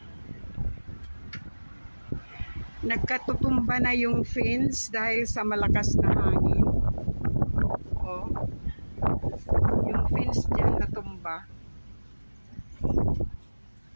nagkatutumba na yung fence dahil sa malakas na hangin. Oh, yung fence dyan natumba.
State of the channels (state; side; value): inverted; both; correlation -1.00